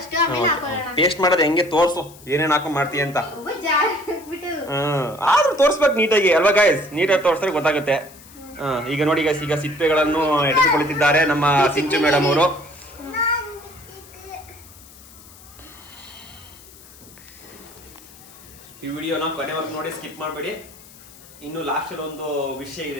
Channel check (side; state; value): left; noise; hiss, 21 dB below the sound